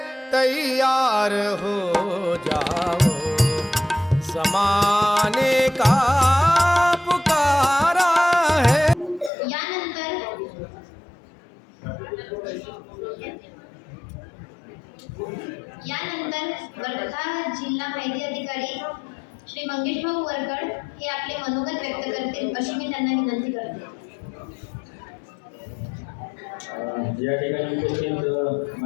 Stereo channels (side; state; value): right; drops out; at 9.3 s